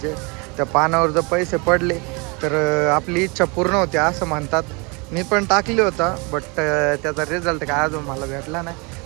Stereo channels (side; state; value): left; quieter; 29.8 dB